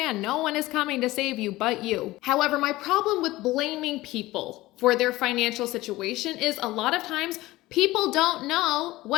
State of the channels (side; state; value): right; quieter; 18.2 dB